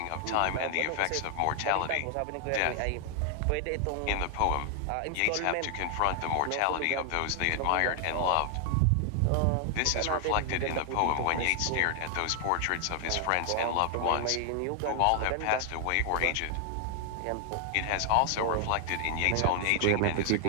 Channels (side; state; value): both; different; correlation 0.00